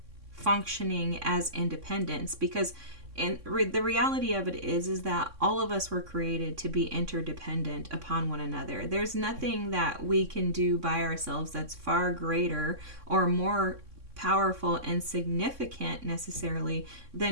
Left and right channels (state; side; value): late; left; 3.6 ms